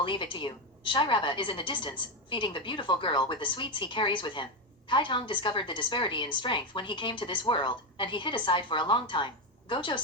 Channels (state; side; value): normal; both; correlation 0.10